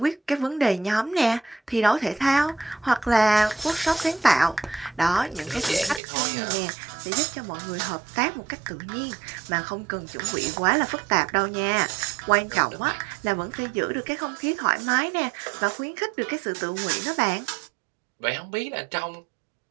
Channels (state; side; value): drops out; left; at 6.0 s